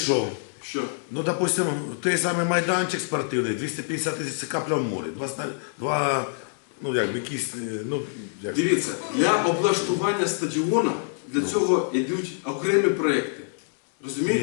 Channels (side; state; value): right; silent; 61 dB below the other